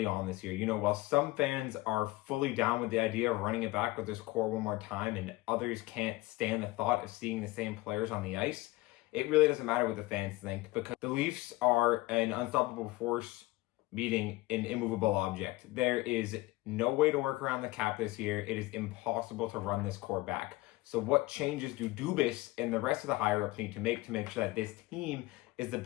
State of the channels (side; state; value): right; quieter; 19.7 dB